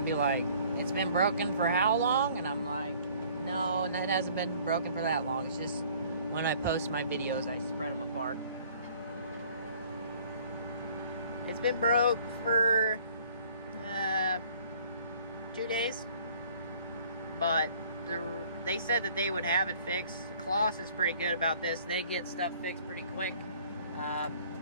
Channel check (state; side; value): inverted; both; correlation -0.55